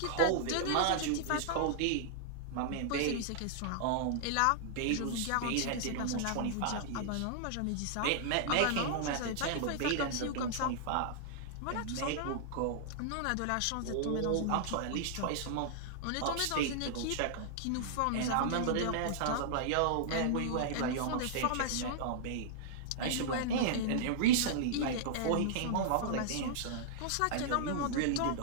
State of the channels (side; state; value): both; different; correlation -0.01